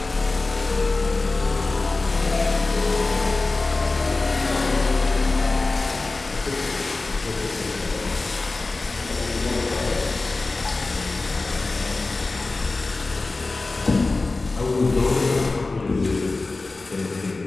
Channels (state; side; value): quieter; right; 3.4 dB